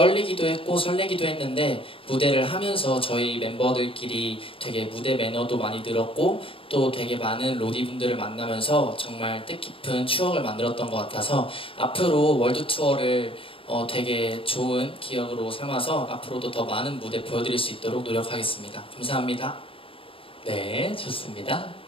했고 설레기도 했는데 무대를 하면서 저희 멤버들끼리 되게 무대 매너도 많이 늘었고 또 되게 많은 로디분들을 만나면서 정말 뜻깊은 추억을 만들었던 것 같아서 앞으로 월드 투어를 되게 좋은 기억으로 삼아서 앞으로도 더 많은 무대 보여드릴 수 있도록 노력하겠습니다. 감사합니다. 네, 좋습니다.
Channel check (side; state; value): right; late; 0.26 ms